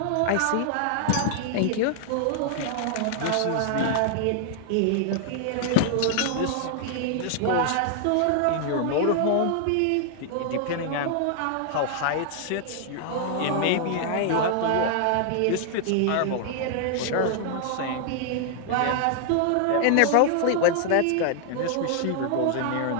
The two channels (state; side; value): different; both; correlation 0.00